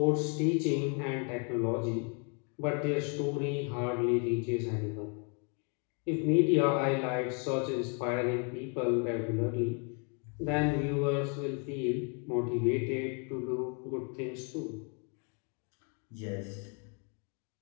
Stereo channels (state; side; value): quieter; right; 37.2 dB